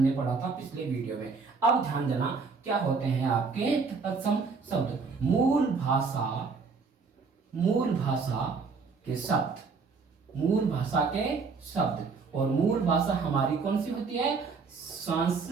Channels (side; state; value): left; quieter; 4.8 dB